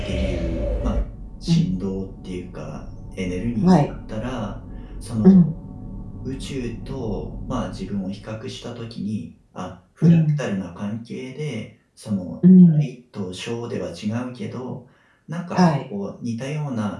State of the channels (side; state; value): both; identical; correlation 1.00